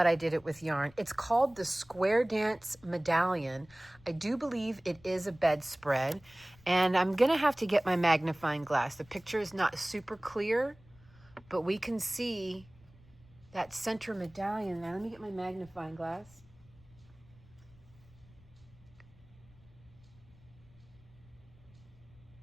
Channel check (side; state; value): left; noise; rumble, 26 dB below the sound